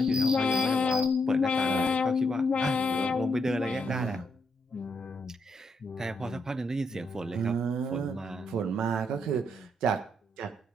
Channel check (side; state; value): both; normal; correlation 0.78